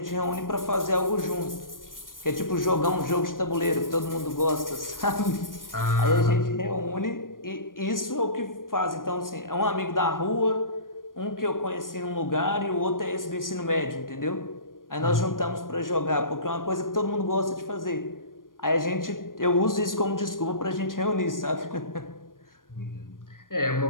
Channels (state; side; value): late; right; 0.90 ms